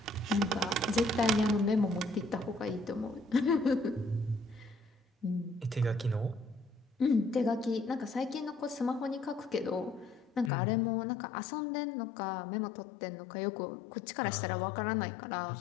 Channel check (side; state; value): right; drops out; at 10.5 s